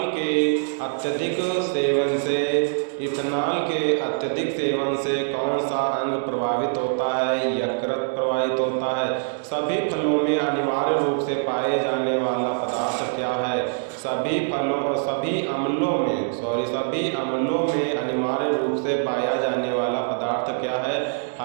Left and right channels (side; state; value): left; silent; 63 dB below the other